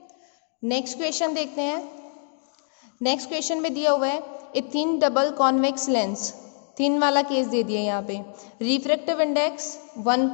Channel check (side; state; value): right; silent; 62 dB below the other